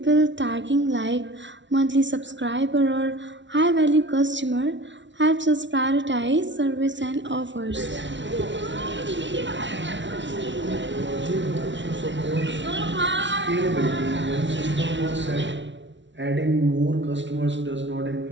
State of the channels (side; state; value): left; late; 0.54 ms